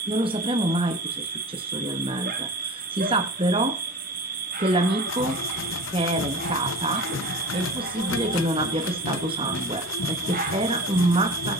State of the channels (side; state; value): both; normal; correlation 0.34